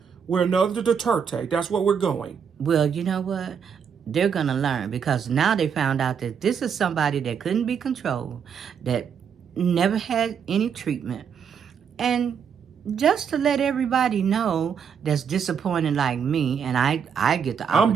We're another Duterte. That's what we're going. Well, you know what? They're going to learn, because now they found out that this is somebody that couldn't be controlled, that never had any treatment. And just to let everybody know that's disappointed like me, and I get the opportunity. I'm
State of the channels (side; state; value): left; quieter; 7.2 dB